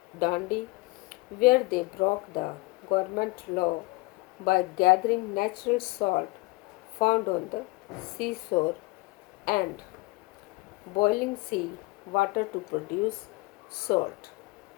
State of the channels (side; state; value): right; quieter; 23.5 dB